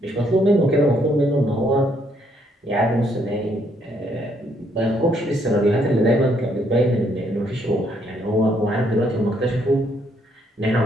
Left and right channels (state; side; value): normal; both; correlation 0.70